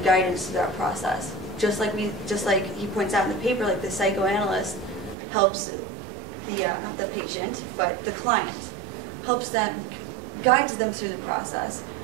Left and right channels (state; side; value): drops out; left; at 5.2 s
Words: to that process. Just like he points out in the paper, like the psychoanalyst helps not the patient, but the client, helps them, guides them through the process.